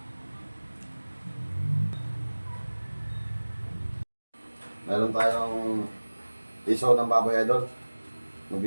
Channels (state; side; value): inverted; both; correlation -1.00